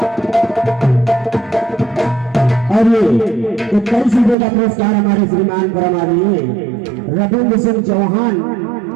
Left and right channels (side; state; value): left; drops out; at 4.4 s